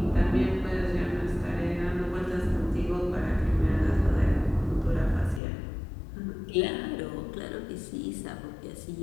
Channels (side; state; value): right; drops out; at 5.4 s